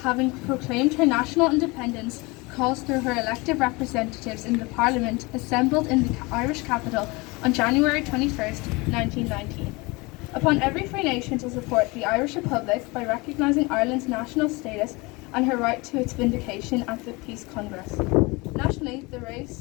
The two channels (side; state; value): right; quieter; 25.2 dB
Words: proclaimed her national independence, calls through her elected representatives in the Parliament assembled in the Irish capital on January 21st, 1919. Upon every free nation to support the Irish Republic by recognising Ireland's national status and her right to its vindication at the Peace Congress. Nationally, the